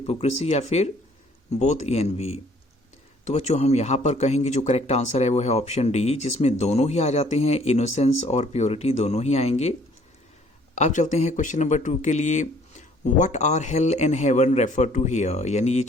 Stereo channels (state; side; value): normal; both; correlation 0.59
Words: या फिर बोथ ए एंड बी। तो बच्चों हम यहाँ पर कहेंगे जो करेक्ट आंसर है वो है ऑप्शन डी, जिसमें दोनों ही आ जाते हैं, इनोसेंस और प्योरिटी दोनों ही आएंगे। अब चलते हैं क्वेश्चन नंबर 2 के लिए। What are hell and heaven refer to here? यानी ये